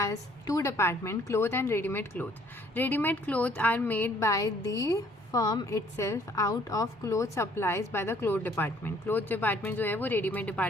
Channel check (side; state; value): both; normal; correlation 0.61